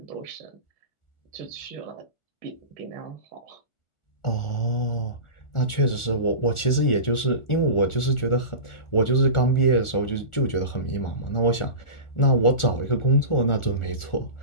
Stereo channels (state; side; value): late; right; 1.4 ms